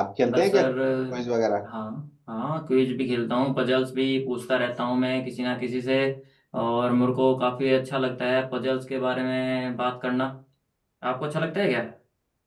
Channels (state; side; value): identical; both; correlation 1.00